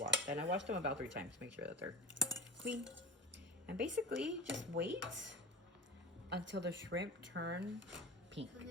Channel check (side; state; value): both; normal; correlation 0.32